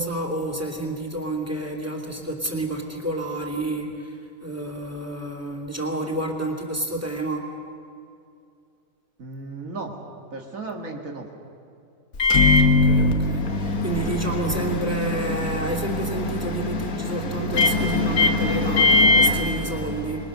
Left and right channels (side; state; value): both; normal; correlation -0.18